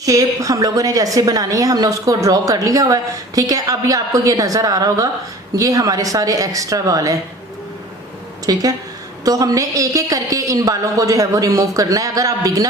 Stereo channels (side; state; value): both; normal; correlation 0.43